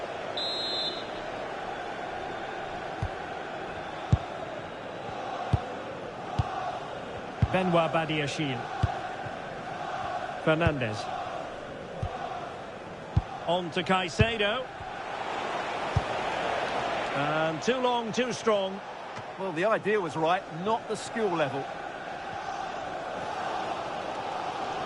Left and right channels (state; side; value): identical; both; correlation 1.00